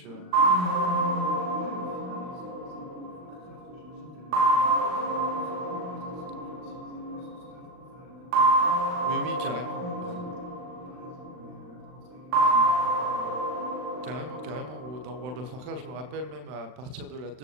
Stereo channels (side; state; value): left; late; 39 ms